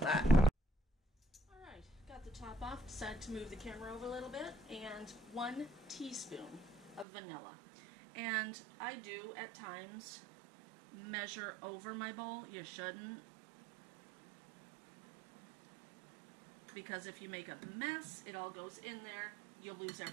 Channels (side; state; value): left; drops out; at 7.1 s